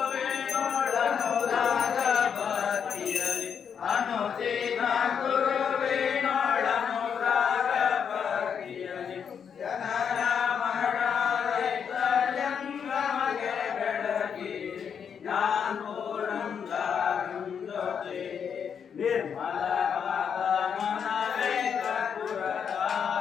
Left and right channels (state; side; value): quieter; right; 7.3 dB